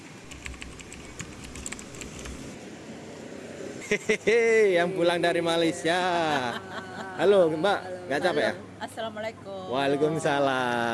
Hehehe, yang pulang dari Malaysia. Halo Mbak, nggak capek ya? Assalamualaikum.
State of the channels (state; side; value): identical; both; correlation 1.00